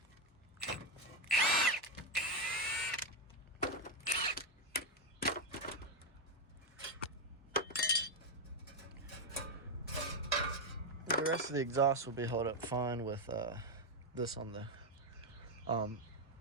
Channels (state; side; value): normal; both; correlation 0.06